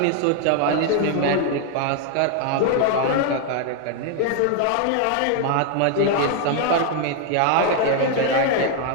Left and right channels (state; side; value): different; both; correlation 0.00